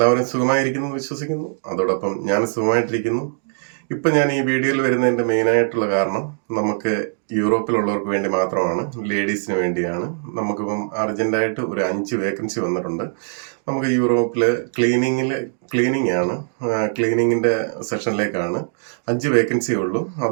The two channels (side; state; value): left; silent; 65 dB below the other